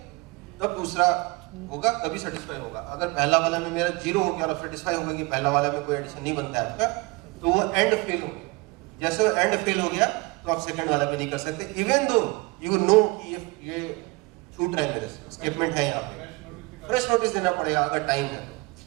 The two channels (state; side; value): quieter; left; 25.0 dB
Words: तब दूसरा होगा, तभी सेटिस्फाई होगा। अगर पहला वाला में मेरा 0 हो गया और सेटिस्फाई होगा कि पहला वाला में कोई एडिशन नहीं बनता है आपका, तो वो एंड फेल हो गया। जैसे वो एंड फेल हो गया तो आप सेकंड वाला पे नहीं कर सकते, इवन दो यू नो कि ये छूट रहा है, मेरे से स्टेटमेंट है यहाँ पे, फ्रेश नोटिस देना पड़ेगा अगर टाइम है तो।